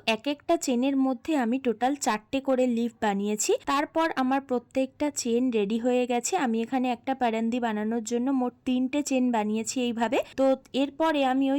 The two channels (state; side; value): identical; both; correlation 1.00